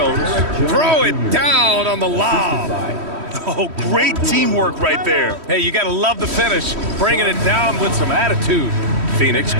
Throw it down on the lob. Oh, great teamwork right there. Hey, you gotta love the finish. Bringing it down with some attitude. Phoenix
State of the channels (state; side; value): late; left; 3.1 ms